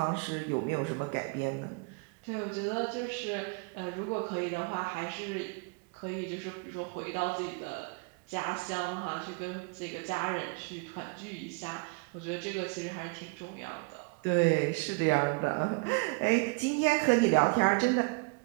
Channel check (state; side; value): quieter; left; 30.8 dB